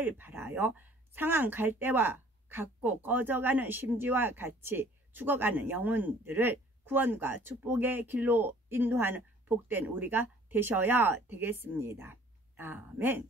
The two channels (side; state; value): both; normal; correlation 0.54